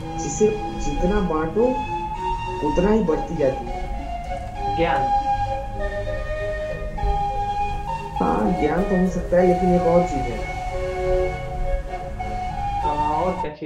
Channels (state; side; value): identical; both; correlation 1.00